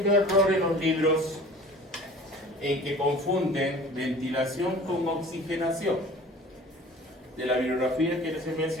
error en los libros en que confunden ventilación con oxigenación. De la bibliografía que les he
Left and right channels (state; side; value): normal; both; correlation 0.44